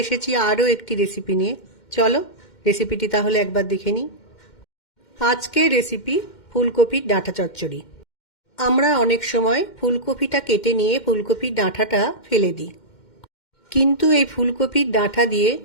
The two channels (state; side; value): late; right; 2.1 ms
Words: এসেছি আরও একটি রেসিপি নিয়ে। চলো রেসিপিটি তাহলে একবার দেখে নিই। আজকের রেসিপি ফুলকপির ডাঁটা চচ্চড়ি। আমরা অনেক সময় ফুলকপিটা কেটে নিয়ে ফুলকপির ডাঁটাটা ফেলে দিই, কিন্তু এই ফুলকপির ডাঁটা দিয়ে